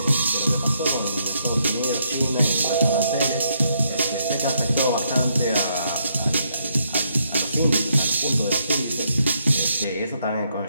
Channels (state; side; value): inverted; both; correlation -0.75